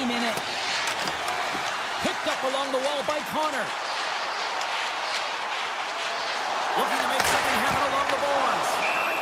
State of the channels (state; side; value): identical; both; correlation 1.00